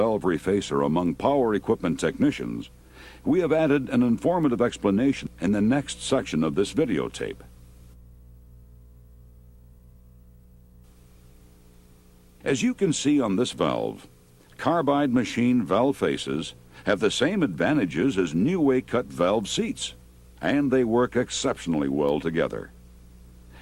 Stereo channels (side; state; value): both; identical; correlation 1.00